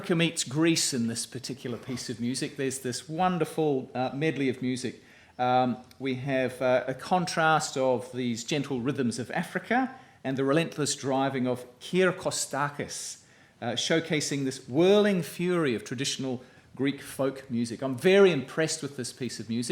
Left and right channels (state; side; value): identical; both; correlation 1.00